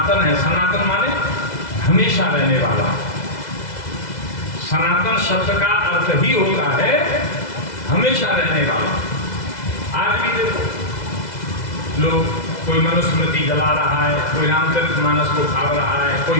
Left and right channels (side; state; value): right; late; 2.0 ms